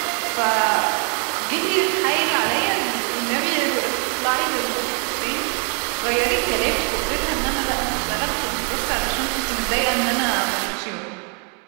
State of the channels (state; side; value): quieter; left; 35.4 dB